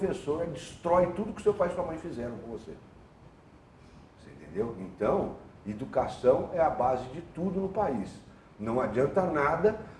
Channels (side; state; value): both; identical; correlation 1.00